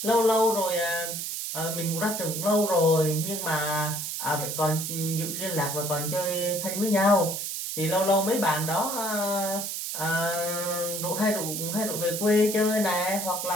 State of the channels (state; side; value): noise; right; hiss, 4 dB below the sound